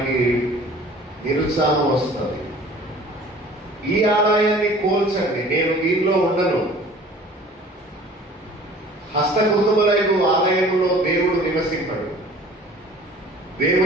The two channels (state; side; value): normal; both; correlation 0.48